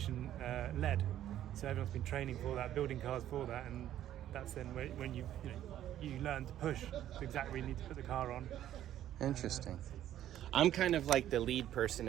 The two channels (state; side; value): quieter; left; 11.9 dB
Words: led. So everyone's been training for that, building cars for that, and that's then when you learn to push to exactly where you need to put the car on. Interesting. I'm kind of like the lead person